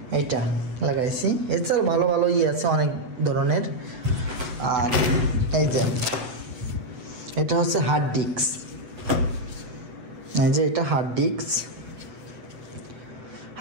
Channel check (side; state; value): left; late; 8.3 ms